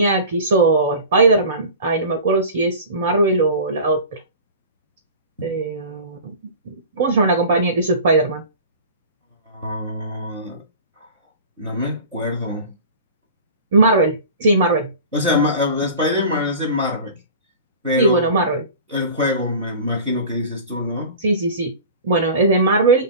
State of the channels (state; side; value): inverted; both; correlation -0.37